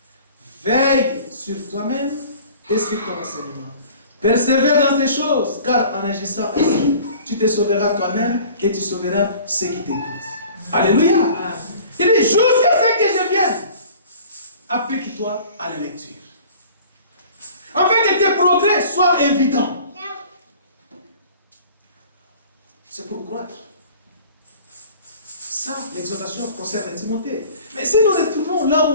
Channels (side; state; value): both; inverted; correlation -0.47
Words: Veille sur toi-même et sur ton enseignement. Persévère dans ces choses, car en agissant ainsi, tu te sauveras toi-même et tu sauveras ceux qui t'écoutent. Alléluia. Il dit, jusqu'à ce que je vienne, applique-toi à la lecture. Afin que tes progrès soient évidents. C'est pour croître. Ça, l'exhortation concerne Timothée. Mais si nous retournons là